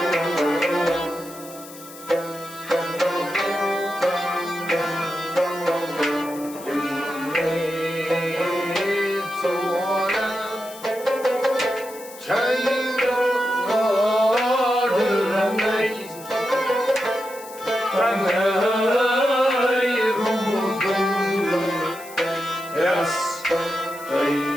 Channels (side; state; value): left; noise; hiss, 17 dB below the sound